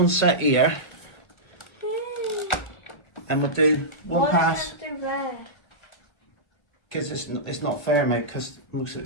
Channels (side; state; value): right; late; 1.5 ms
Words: set here, and we'll do one pass, because it's not fair, mate, because most of